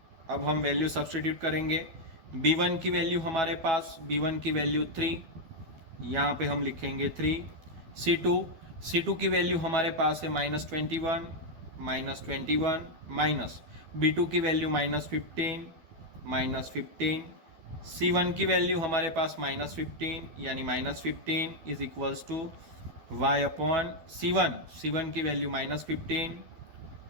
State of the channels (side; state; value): left; late; 12 ms